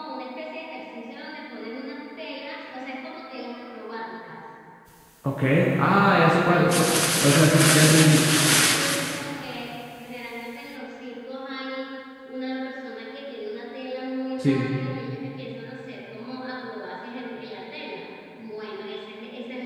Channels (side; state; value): both; identical; correlation 1.00